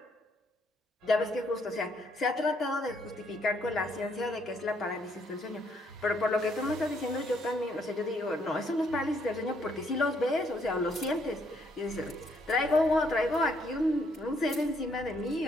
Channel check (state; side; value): normal; both; correlation 0.70